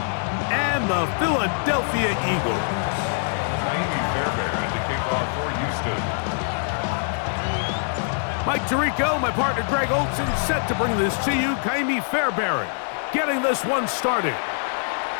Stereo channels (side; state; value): right; silent; digital silence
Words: and the Philadelphia Eagles. Ka'imi Fairbairn to kick off for Houston. Mike Tirico, my partner Greg Olson, set to bring this to you. Ka'imi Fairbairn getting this one started.